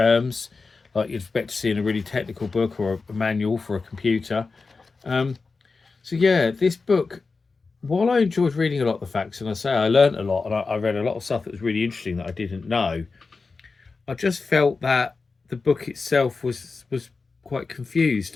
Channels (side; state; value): right; quieter; 4.3 dB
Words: like you'd expect to see in a really technical book or a manual for a computer. So yeah, this book, while I enjoyed reading a lot of the facts, and I say I learned a lot, and I read a lot of stuff that was really interesting that I didn't know, I just felt that the book itself was quite